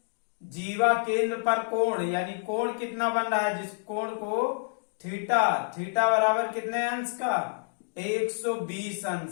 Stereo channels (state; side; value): silent; right; digital silence